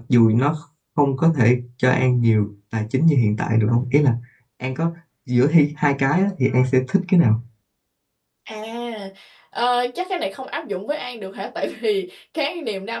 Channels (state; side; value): identical; both; correlation 1.00